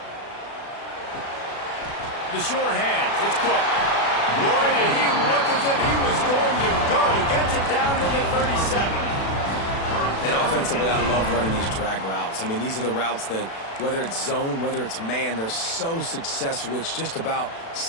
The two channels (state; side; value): late; right; 36 ms